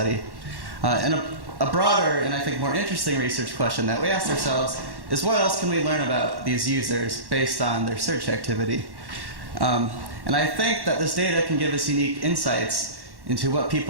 And a broader and I think more interesting research question that we asked ourselves is, what else can we learn about these users based on their search activity? And I think that this data can give us unique insights into what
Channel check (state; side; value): late; left; 1.1 ms